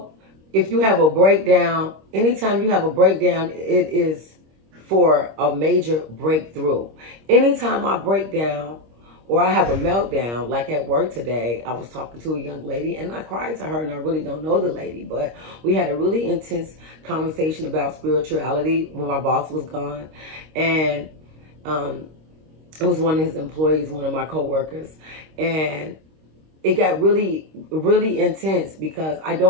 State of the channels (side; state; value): left; late; 26 ms